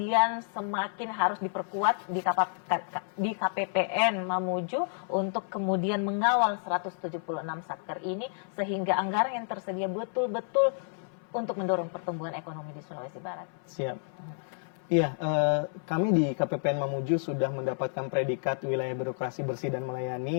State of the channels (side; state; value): right; silent; 58 dB below the other